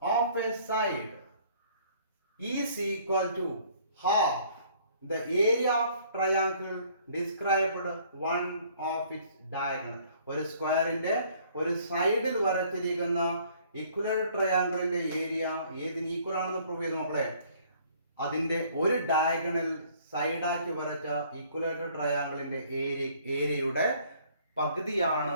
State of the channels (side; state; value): both; inverted; correlation -0.58